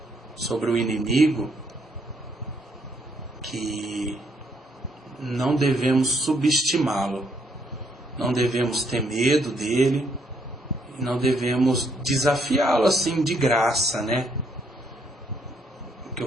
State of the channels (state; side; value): normal; both; correlation 0.71